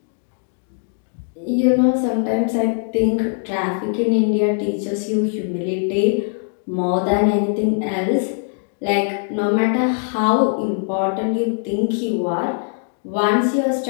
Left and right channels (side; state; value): right; silent; 62 dB below the other